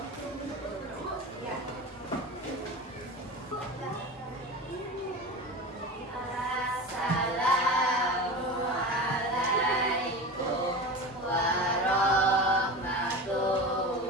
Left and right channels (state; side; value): normal; both; correlation 0.29